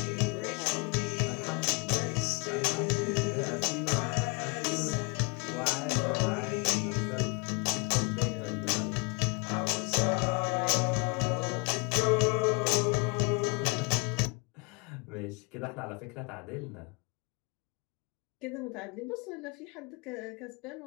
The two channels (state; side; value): quieter; right; 31.6 dB